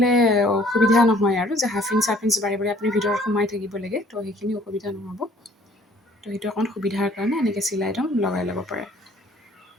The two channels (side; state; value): both; normal; correlation 0.57